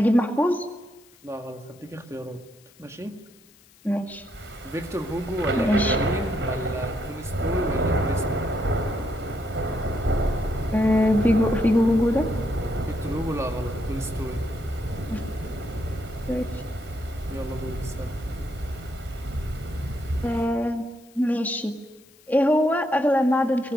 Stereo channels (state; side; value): noise; left; hiss, 28 dB below the sound